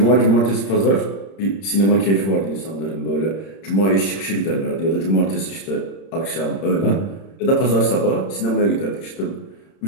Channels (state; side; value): late; right; 31 ms